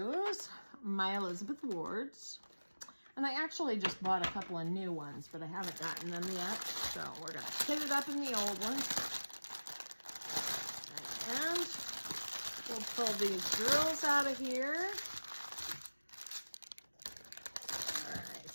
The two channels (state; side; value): inverted; both; correlation -1.00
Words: my Elizabeth Wards, and I actually just bought a couple of new ones, but I haven't gotten them yet. So we're gonna kit it up in the old ones, and we'll pull these drills out of here. All right,